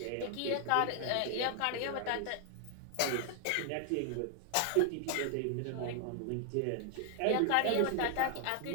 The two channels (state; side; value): different; both; correlation 0.00